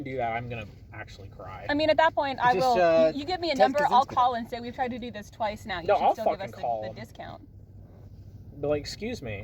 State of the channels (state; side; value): identical; both; correlation 1.00